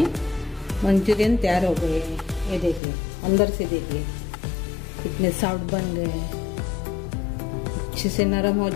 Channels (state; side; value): drops out; right; at 2.8 s